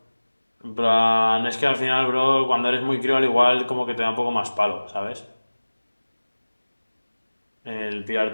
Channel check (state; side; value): inverted; both; correlation -1.00